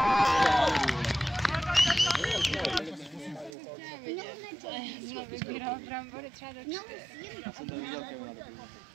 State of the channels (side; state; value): left; drops out; at 3.5 s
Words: Jsme vybíral brambory třeba do 4. Já jsem to viděl, Kevina.